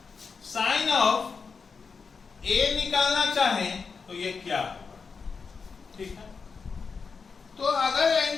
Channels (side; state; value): right; quieter; 5.2 dB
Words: साइन ऑफ ए निकालना चाहें तो ये क्या होगा, ठीक है। तो अगर